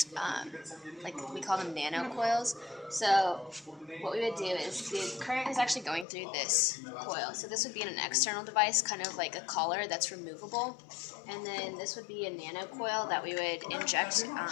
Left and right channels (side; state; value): right; drops out; at 6.1 s